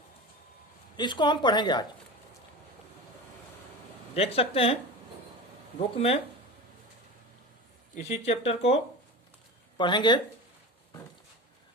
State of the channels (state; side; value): normal; both; correlation 0.29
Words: इसको हम पढ़ेंगे आज। देख सकते हैं बुक में, इसी चैप्टर को पढ़ेंगे।